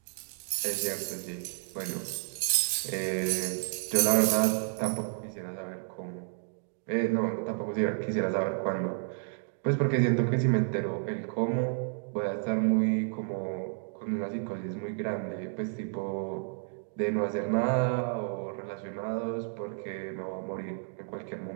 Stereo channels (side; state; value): left; silent; 57 dB below the other